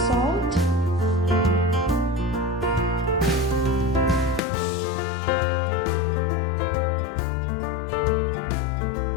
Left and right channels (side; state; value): right; drops out; at 4.4 s